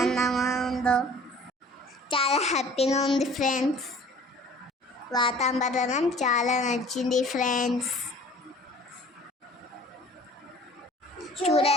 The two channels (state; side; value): normal; both; correlation 0.49